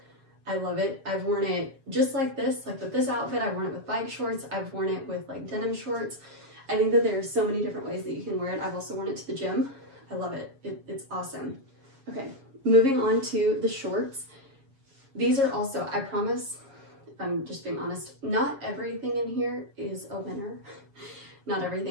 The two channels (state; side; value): late; left; 7.4 ms